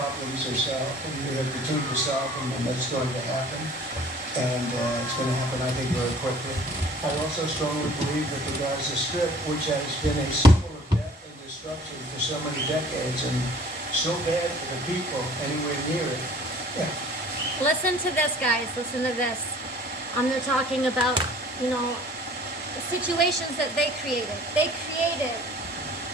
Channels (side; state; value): both; normal; correlation 0.51